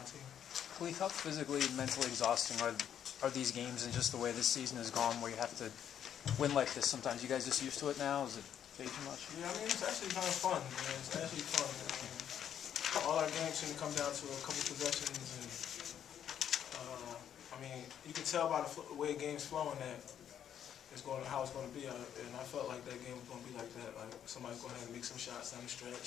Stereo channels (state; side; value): quieter; right; 9.4 dB